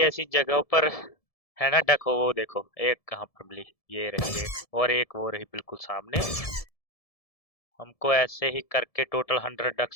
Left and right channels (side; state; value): right; late; 1.7 ms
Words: ऐसी जगहों पर है ना डक हो। वो देखो एक कहाँ पर मिली, ये रही एक। और एक वो रही बिल्कुल सामने। हमको ऐसे ही करके टोटल 100